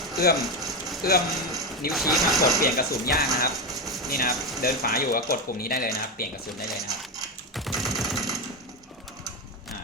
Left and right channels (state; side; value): normal; both; correlation 0.13